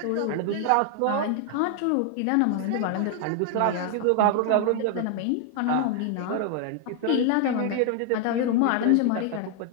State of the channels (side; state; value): both; different; correlation 0.00